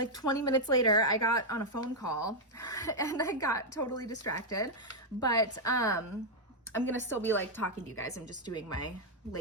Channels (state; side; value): normal; both; correlation -0.02